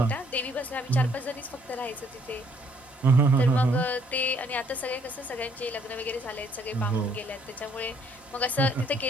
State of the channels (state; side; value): normal; both; correlation 0.65